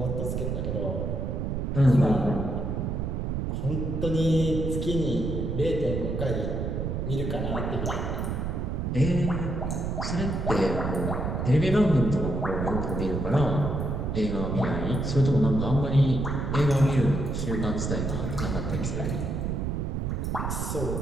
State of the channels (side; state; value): right; noise; rumble, 1 dB below the sound